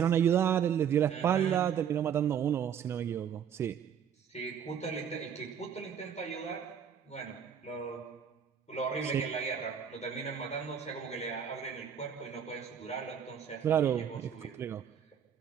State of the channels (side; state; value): left; quieter; 8.2 dB